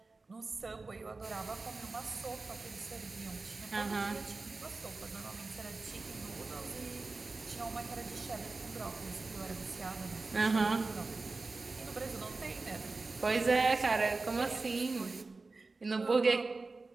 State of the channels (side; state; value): left; quieter; 3.7 dB